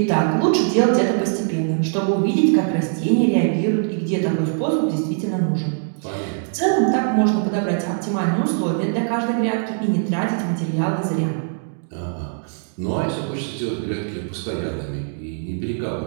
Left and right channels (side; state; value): left; silent; 64 dB below the other